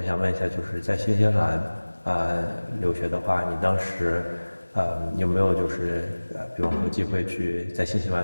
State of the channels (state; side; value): inverted; both; correlation -1.00